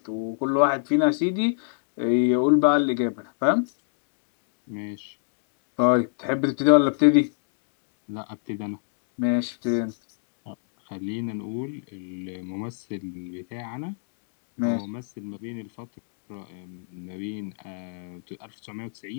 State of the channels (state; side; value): silent; right; digital silence